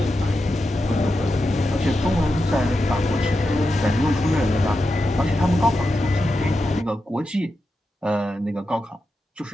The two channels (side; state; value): both; normal; correlation 0.89